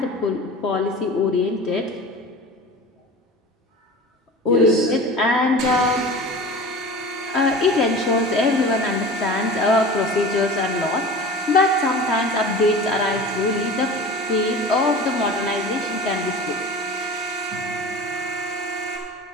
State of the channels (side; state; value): both; normal; correlation 0.36